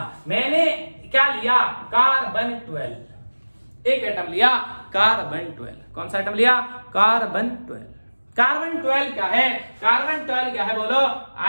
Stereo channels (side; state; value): both; inverted; correlation -1.00